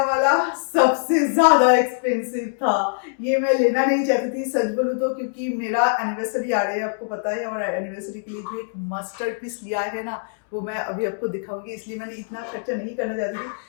वाला सबसे ज्यादा एक्सपेंसिव था। ये मैं लेना नहीं चाहती थी सच बोलूं तो, क्योंकि मेरा एनिवर्सरी आ रही है, आपको पता है, और एनिवर्सरी के लिए जो एक मस्टर्ड पीस लिया है ना, वो मैं अभी आपको दिखाऊंगी, इसलिए मैंने इतना खर्चा नहीं करना चाहती थी।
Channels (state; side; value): silent; right; 63 dB below the other